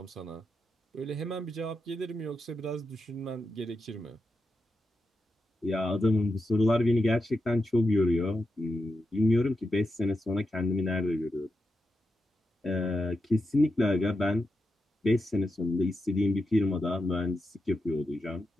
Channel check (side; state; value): both; normal; correlation 0.87